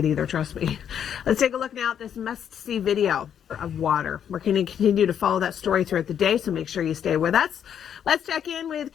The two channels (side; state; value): right; quieter; 8.8 dB